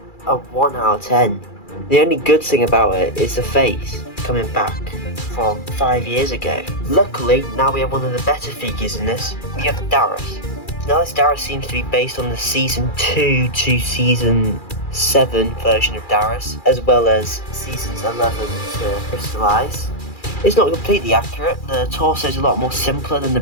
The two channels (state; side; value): late; right; 2.4 ms